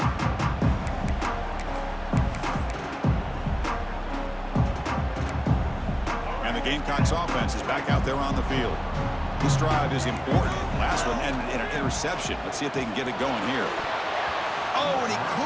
And the Gamecocks offense is back out there on the field. This drive is important. Last one ended in an interception. Let's see if they can get it going here. Oh, and he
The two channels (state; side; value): identical; both; correlation 1.00